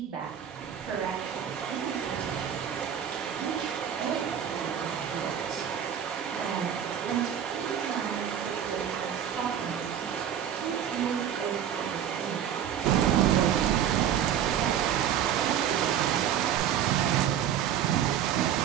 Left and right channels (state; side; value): quieter; left; 9.5 dB